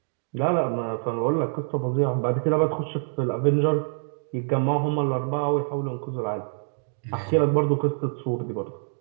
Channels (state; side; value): silent; left; digital silence